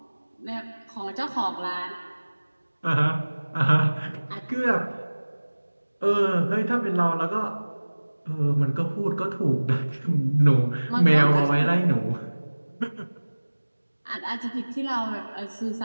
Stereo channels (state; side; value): inverted; both; correlation -1.00